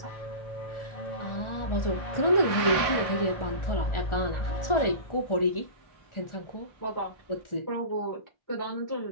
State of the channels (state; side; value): late; right; 1.4 ms